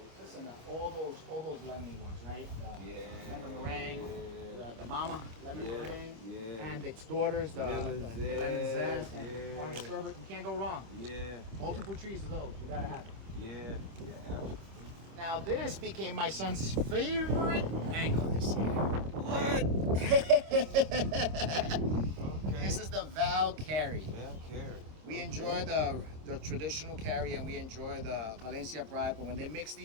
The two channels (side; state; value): left; late; 26 ms